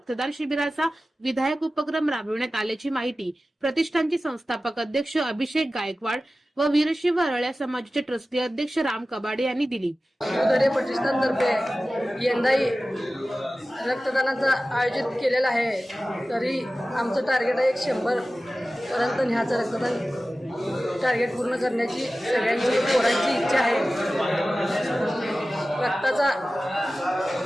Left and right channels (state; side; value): normal; both; correlation 0.95